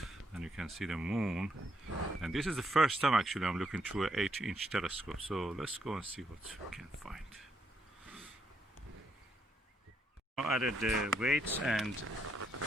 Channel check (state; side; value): normal; both; correlation 0.76